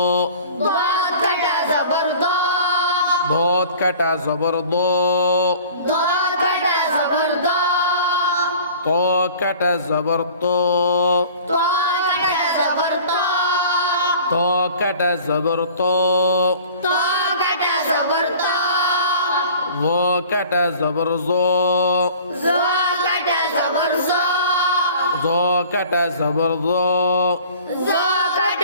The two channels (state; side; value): inverted; both; correlation -0.46